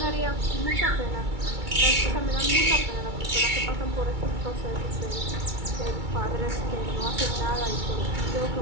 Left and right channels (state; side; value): late; left; 2.3 ms